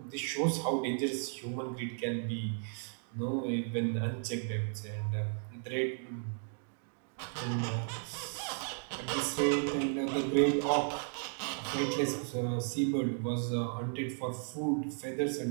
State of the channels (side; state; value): left; silent; 55 dB below the other